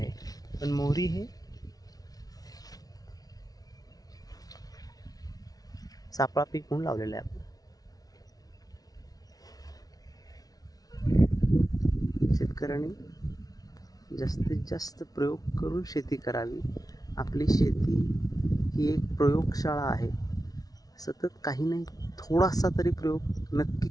पण मोहरी हे सापळा पीक म्हणून लावलेलं आहे. आपलं शेतकऱ्यांनी जास्तीत जास्त प्रयोग करून शेती करावी. आपली शेती ही एक प्रयोगशाळा आहे. सतत काही नाही थोडासा तरी प्रयोग नक्की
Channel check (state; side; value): late; right; 0.18 ms